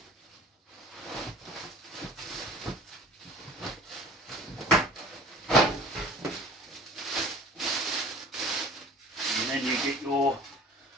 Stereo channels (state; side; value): normal; both; correlation 0.45